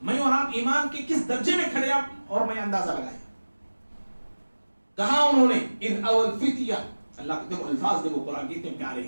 میں اور آپ ایمان کے کس درجے میں کھڑے آپ اور میں اندازہ لگائیں. کہا انہوں نے اذ اول فتیہ, اللہ کے دیکھو الفاظ دیکھو قرآن کتنے پیارے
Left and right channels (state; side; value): inverted; both; correlation -1.00